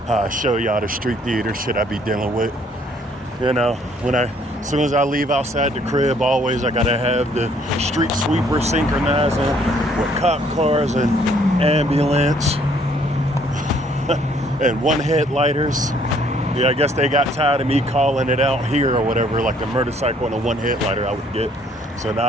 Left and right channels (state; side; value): normal; both; correlation 0.63